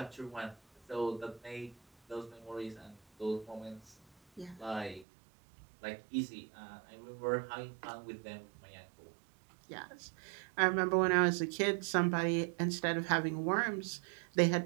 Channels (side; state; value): left; drops out; at 5.1 s